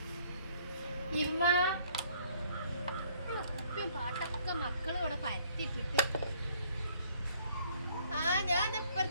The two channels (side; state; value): both; inverted; correlation -0.62